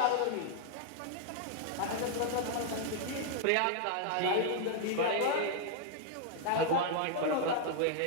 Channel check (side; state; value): both; different; correlation 0.00